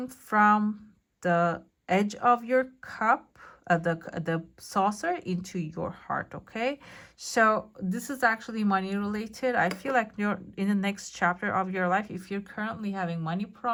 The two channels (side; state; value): both; identical; correlation 1.00